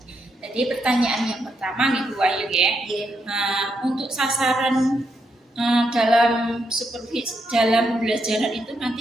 Jadi pertanyaan yang pertama nih Bu Wahyu ya. Untuk sasaran dalam supervisi dalam pembelajaran itu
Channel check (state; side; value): normal; both; correlation 0.80